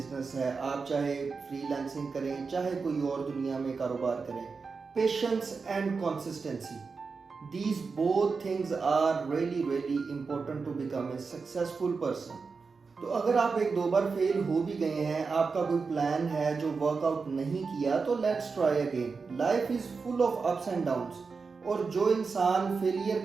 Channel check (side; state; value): left; quieter; 4.8 dB